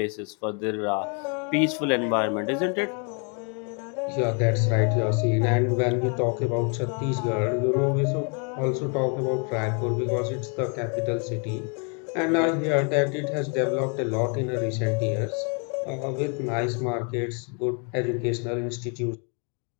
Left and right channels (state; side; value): quieter; right; 38.0 dB